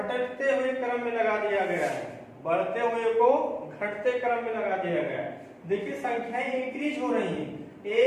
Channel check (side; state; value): both; identical; correlation 1.00